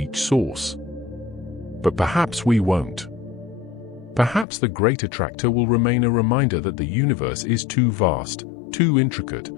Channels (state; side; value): drops out; right; at 4.5 s